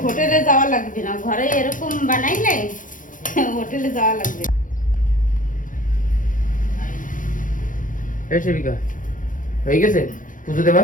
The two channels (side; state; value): right; late; 0.38 ms